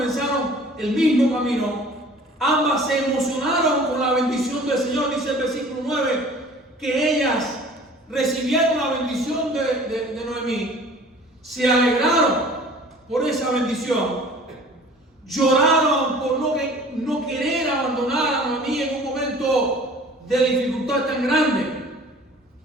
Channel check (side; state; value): both; normal; correlation 0.47